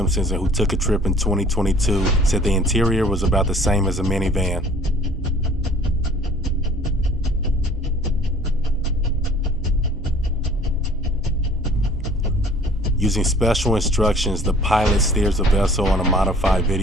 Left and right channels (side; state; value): both; normal; correlation 0.51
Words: and who took a trip in 2022, said the interior was about the same as a minivan. Using special instructions, the pilot steers the vessel on a modified